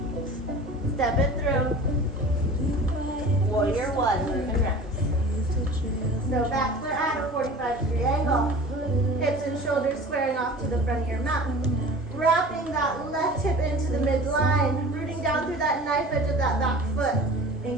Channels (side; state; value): both; normal; correlation 0.40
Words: Step it through. Warrior 1, move and rest. So back foot at a 45-degree angle. Hips and shoulders squaring off to the front of your mat. Wrapping that left hip into the midline. Rooting down through that knife edge of that back foot.